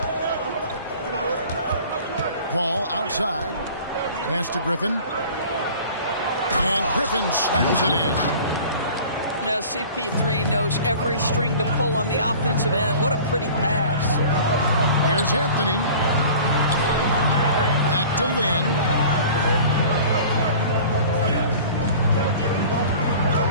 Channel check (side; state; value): both; inverted; correlation -0.43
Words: Paul outside. Pass to Griffin. And Griffin slams it in. Now CP3 knows every string to pull on the offensive end. What a pretty pass. Here's Anthony. Back to Lynn.